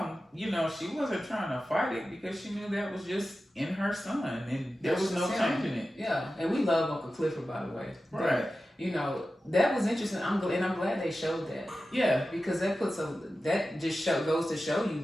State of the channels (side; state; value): both; normal; correlation 0.94